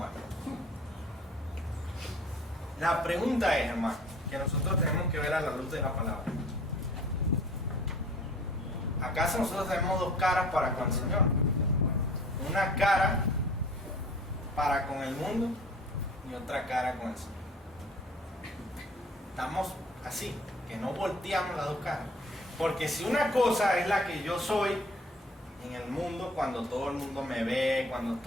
La pregunta es, hermano, que nosotros tenemos que ver a la luz de la palabra. ¿Acaso nosotros tenemos dos caras para con el Señor? Una cara para con el mundo y otra cara con el Señor. Estamos así, que no volteamos las dos caras. Porque si una cosa es la que yo soy en el mundo, cuando todo el mundo me ve, cuando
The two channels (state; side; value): normal; both; correlation 0.48